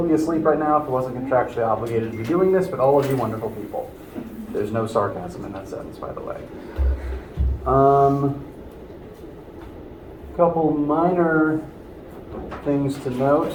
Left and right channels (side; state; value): both; identical; correlation 1.00